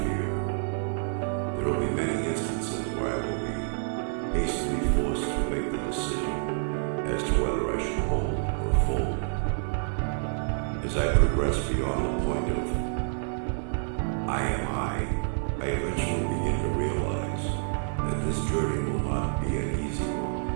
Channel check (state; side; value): silent; left; 59 dB below the other